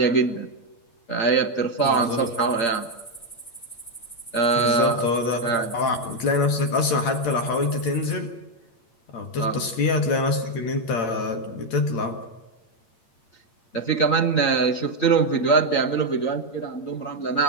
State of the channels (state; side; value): late; right; 8.7 ms